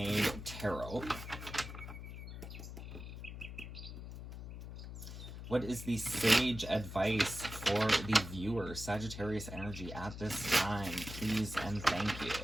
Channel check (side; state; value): left; noise; hum, 10 dB below the sound